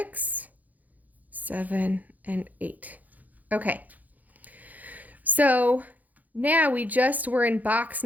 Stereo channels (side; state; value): left; late; 0.080 ms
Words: 7, and 8. Okay. So now we just were in box